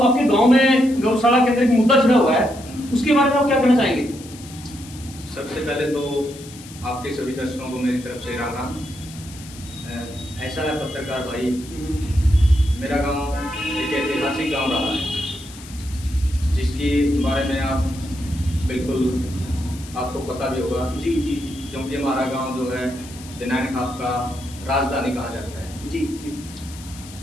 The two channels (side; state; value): left; noise; hiss, 18 dB below the sound